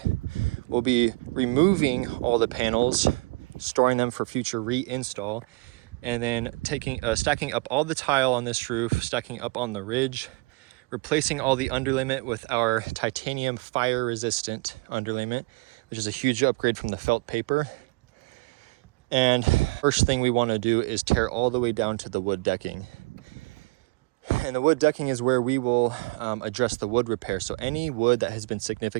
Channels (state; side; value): quieter; left; 25.8 dB